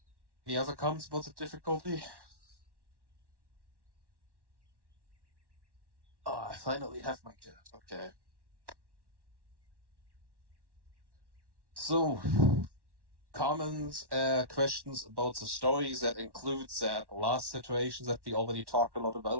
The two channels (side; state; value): left; late; 1.1 ms